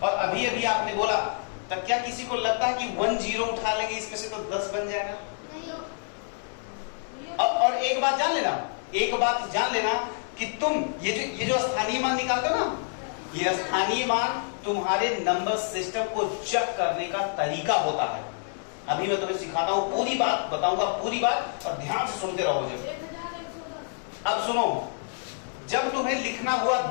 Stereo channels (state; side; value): silent; right; digital silence